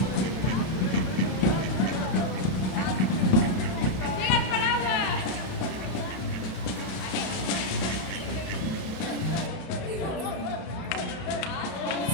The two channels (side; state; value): right; late; 32 ms